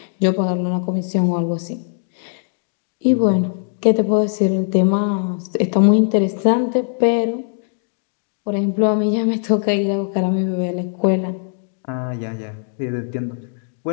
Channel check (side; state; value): right; silent; digital silence